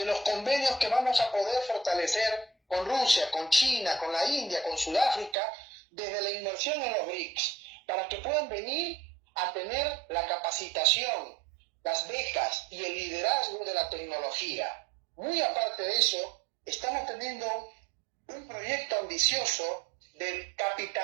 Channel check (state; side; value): drops out; left; at 5.4 s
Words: los convenios que vamos a poder fortalecer con Rusia, con China, con la India, con Sudáfrica, desde la inversión en los BRICS, para que puedan venir a tener la capacitación, las becas y el liderazgo de la tecnología. Muy aparte de eso, estamos teniendo un proyecto ambicioso de